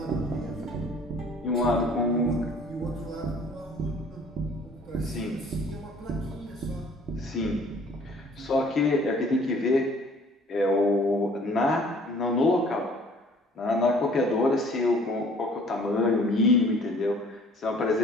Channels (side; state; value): both; normal; correlation 0.54